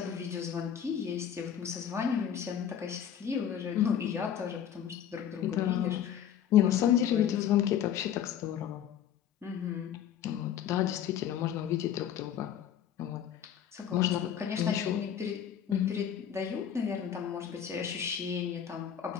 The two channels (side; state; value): right; quieter; 9.4 dB